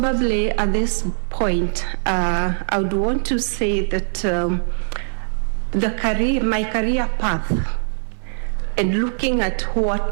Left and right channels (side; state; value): left; silent; 63 dB below the other